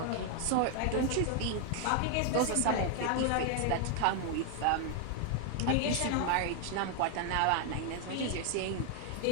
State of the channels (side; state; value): both; different; correlation 0.01